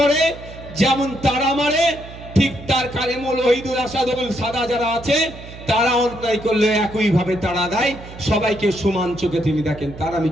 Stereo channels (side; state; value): right; noise; hum, 15 dB below the sound